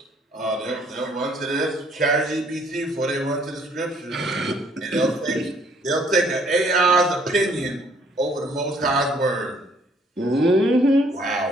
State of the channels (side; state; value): both; normal; correlation 0.63